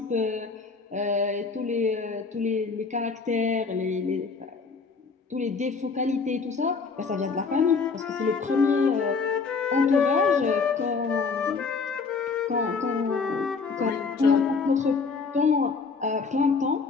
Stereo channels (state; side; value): quieter; right; 4.8 dB